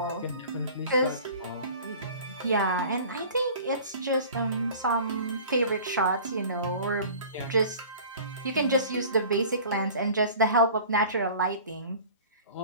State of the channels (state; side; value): inverted; both; correlation -0.43